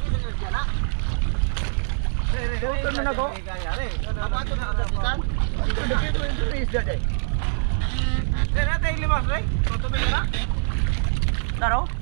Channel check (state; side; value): silent; left; 63 dB below the other